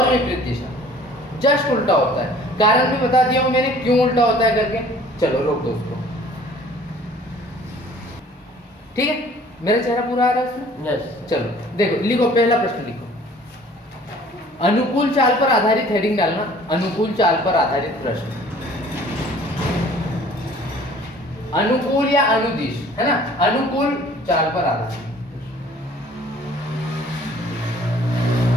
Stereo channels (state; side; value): normal; both; correlation 0.52